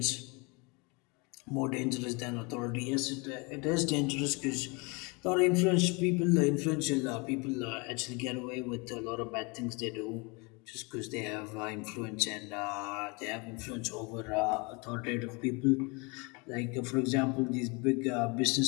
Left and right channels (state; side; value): quieter; right; 29.3 dB